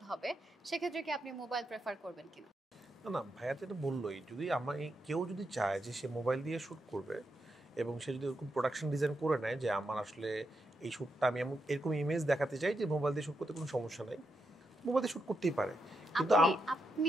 হবে সেক্ষেত্রে কি আপনি মোবাইল প্রেফার করবেন কিনা? না ভাইয়া তো এটা বললোই, যদি কেউ যদি চায় যে সে মোবাইল দিয়ে শ্যুট করবে এবং সে যদি ওরকম প্রোডাকশন ডিজাইন করে নেয় যে আমার আসলে এই শ্যুটটা আমি এরকম ইমেজ দেখাতে চাই যে মোবাইল দিয়ে শ্যুট করতে কোনো সমস্যা নাই, মোবাইল দিয়ে শ্যুট করতেই পারে। কিন্তু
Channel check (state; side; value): normal; both; correlation 0.84